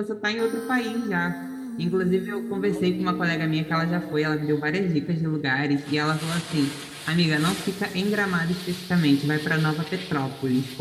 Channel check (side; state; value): both; identical; correlation 1.00